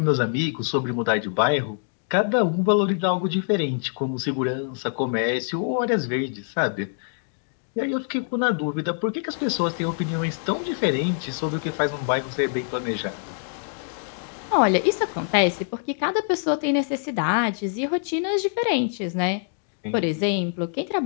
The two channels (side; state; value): right; silent; digital silence